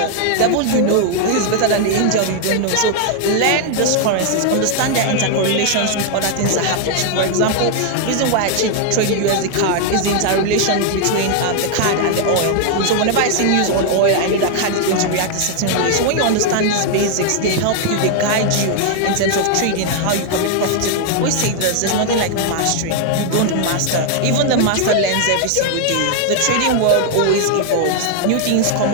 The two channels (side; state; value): both; different; correlation 0.00